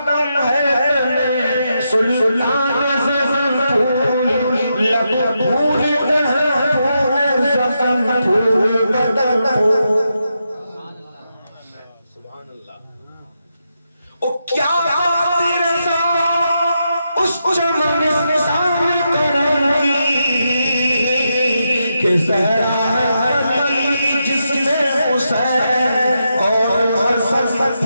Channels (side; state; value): both; inverted; correlation -0.84